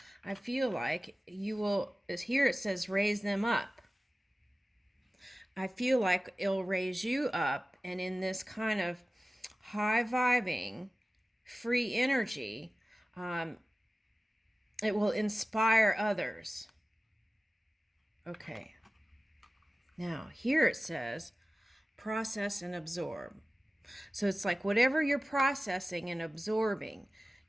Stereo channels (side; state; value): both; normal; correlation 0.96